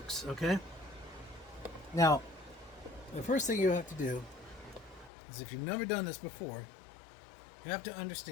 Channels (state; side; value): drops out; right; at 5.1 s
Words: okay? Now, the first thing you have to do is, if you've never done this before, you have to